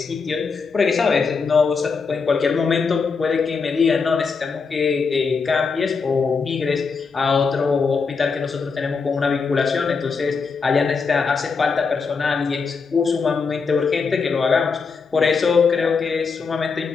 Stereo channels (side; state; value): right; quieter; 5.1 dB